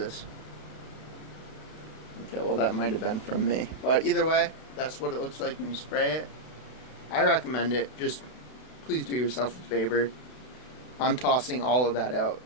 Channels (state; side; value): late; right; 32 ms